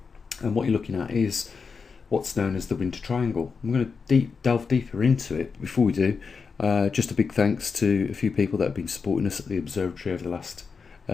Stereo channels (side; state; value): right; quieter; 5.3 dB